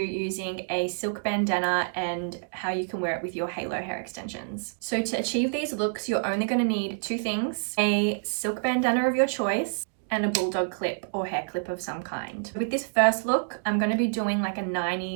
a silk bandana and how you can wear it with your halo hair extensions. So to achieve these looks, you're only going to need 2 things: a silk bandana of your choice and a bulldog clip or hair clip of some kind. With this first look, I'm going to be doing like a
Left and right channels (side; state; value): left; silent; digital silence